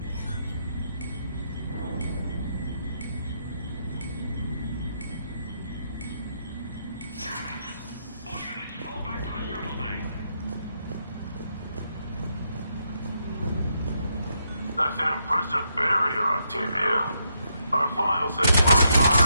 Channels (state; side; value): inverted; both; correlation -0.79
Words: All units, fall back to the shuttle bay. That's an impressive barrier, Octavia. Our final says